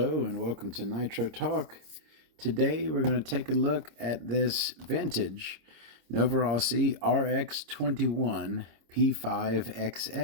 and welcome to Nitro Talk. Today we're going to take a look at this vintage Novarossi RX-21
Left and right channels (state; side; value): late; left; 26 ms